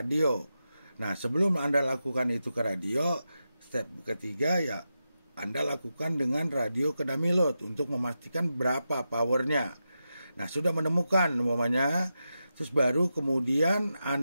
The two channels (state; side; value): inverted; both; correlation -0.89